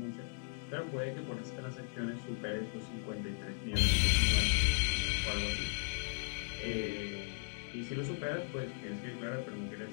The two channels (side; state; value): right; silent; digital silence